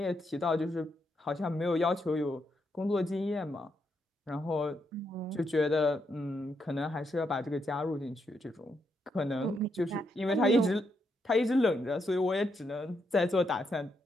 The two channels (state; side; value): normal; both; correlation 0.80